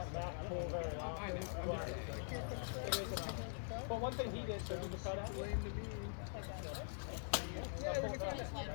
back pull very often. But one thing he did, so he was cut out.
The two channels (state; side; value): silent; right; digital silence